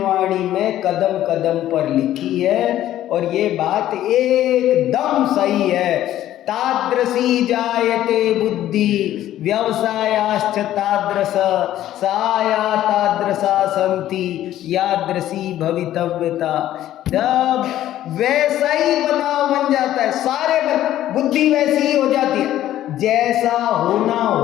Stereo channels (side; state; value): right; quieter; 12.9 dB